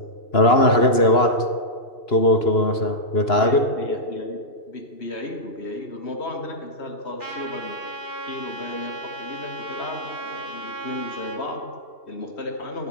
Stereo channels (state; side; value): late; right; 2.9 ms